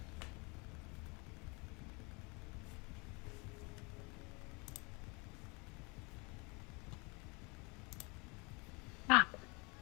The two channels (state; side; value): quieter; right; 29.4 dB